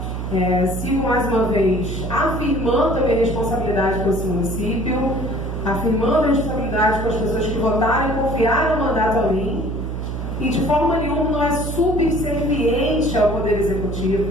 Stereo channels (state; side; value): noise; right; hum, 4 dB below the sound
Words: Sigo mais uma vez afirmando a minha responsabilidade com esse município, afirmando a responsabilidade com as pessoas que votaram e confiaram o mandato a mim, e de forma nenhuma não é subserviente ao Poder